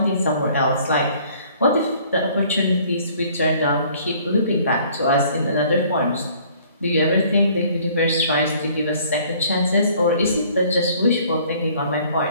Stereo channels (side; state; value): both; inverted; correlation -0.57